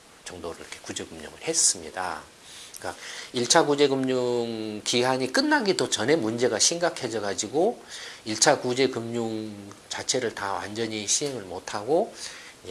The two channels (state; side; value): identical; both; correlation 1.00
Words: 정도를 이렇게 구제금융을 했습니다. 그러니까 1차 구제금융 기한이 끝나기도 전에 문제가 심각해져 가지고 1차 구제금융 자체를 다 완전히 시행을 못하고